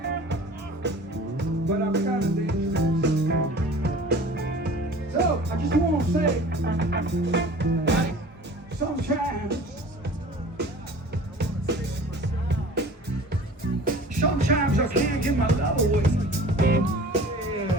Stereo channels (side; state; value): both; normal; correlation 0.43